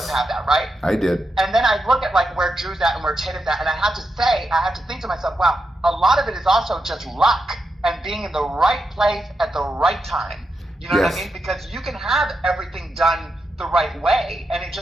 have that, right? I did. And then I look at where Drew's at and where Tatum's at, and I have to think to myself, wow, a lot of it is also just luck and being in the right place at the right time. You know what I mean? Because you can have everything done the right way, and it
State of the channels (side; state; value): both; normal; correlation 0.86